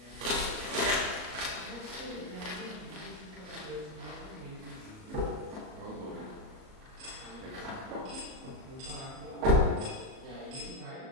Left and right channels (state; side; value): late; left; 38 ms